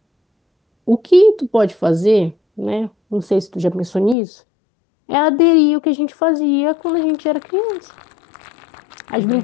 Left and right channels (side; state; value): right; drops out; at 4.2 s